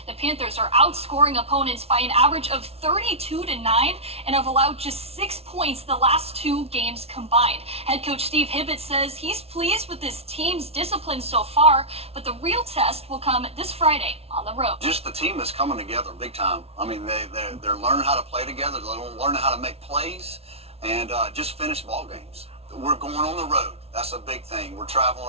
The Panthers are outscoring opponents by an average of 32-9 and have allowed just 6 points the last 2 games combined. Head coach Steve Hibbett says he's pleased with this team's discipline so far, but the real test will come this Friday on the road. Just the team is coming together big time. I mean, they're learning how to play together. They're learning how to make plays and just finish ball games. We're going on the road. That's a big thing. We're traveling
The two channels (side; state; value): left; late; 0.30 ms